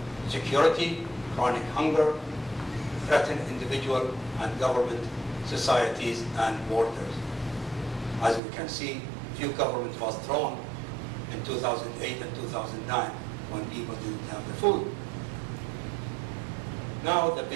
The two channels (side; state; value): left; drops out; at 8.4 s